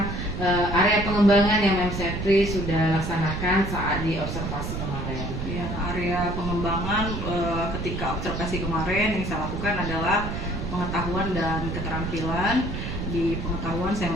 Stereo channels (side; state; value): right; noise; rumble, 4 dB below the sound